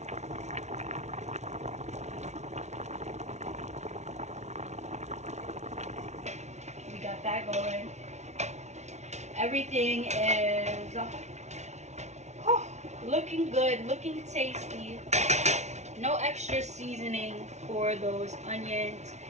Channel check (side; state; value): left; late; 0.32 ms